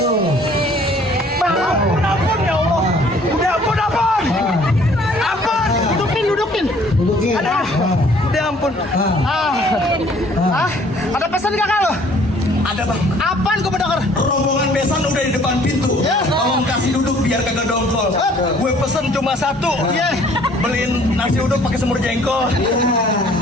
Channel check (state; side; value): normal; both; correlation 0.57